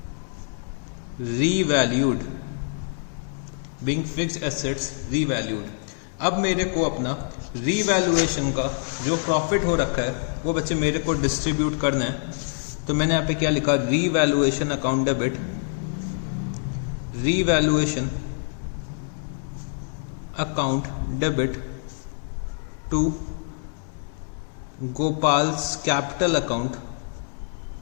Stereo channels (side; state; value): right; silent; 61 dB below the other